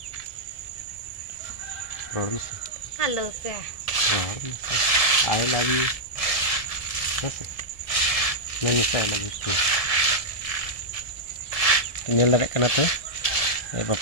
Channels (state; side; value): late; right; 1.7 ms